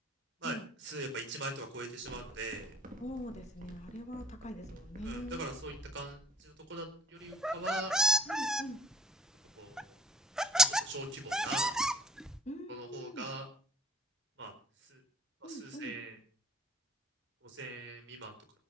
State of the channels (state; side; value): normal; both; correlation 0.53